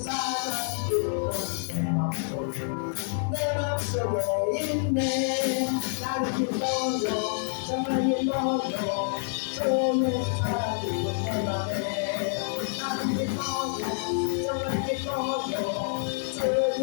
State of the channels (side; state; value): right; silent; 58 dB below the other